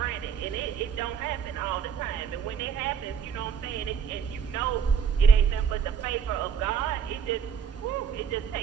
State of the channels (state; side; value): quieter; left; 7.3 dB